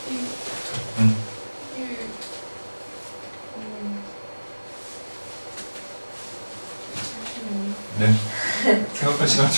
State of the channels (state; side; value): inverted; both; correlation -1.00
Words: 네. 생각할 시간